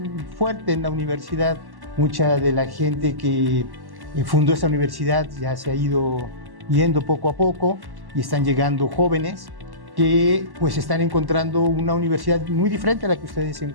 fuerte en la universidad. Mucha de la gente que fundó esta universidad ya se ha ido yendo poco a poco y están llegando jóvenes que pues están encontrando una universidad muy diferente a la que ustedes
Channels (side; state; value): left; late; 1.1 ms